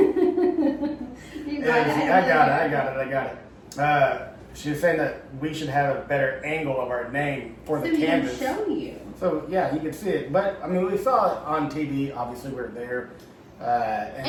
is, got it. I got it. She was saying that we should have a better angle of our name for the So we can canvas. show you. So yeah, you can see it. But I mean, we saw it on TV. Obviously, we were there.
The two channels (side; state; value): both; identical; correlation 1.00